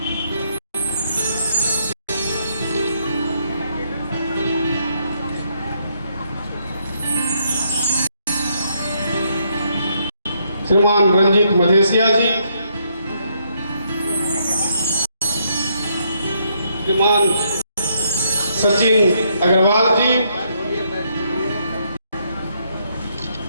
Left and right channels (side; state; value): both; inverted; correlation -0.74